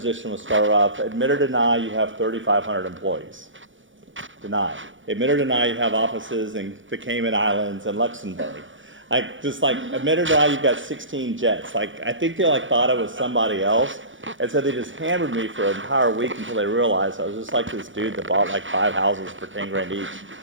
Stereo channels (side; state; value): left; late; 0.56 ms